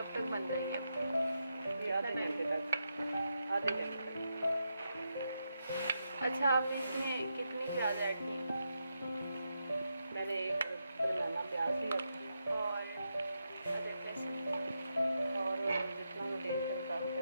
तक बन जाएगी? ये आधे घंटे तक। अच्छा, आपने इसमें कितनी प्याज ऐड की? मैंने एक बनाना प्याज लिया और अदरक लहसुन और जितना मैं तेल के मुताबिक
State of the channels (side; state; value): both; inverted; correlation -0.85